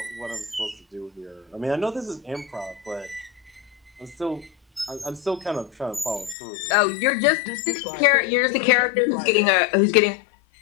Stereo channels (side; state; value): right; drops out; at 6.4 s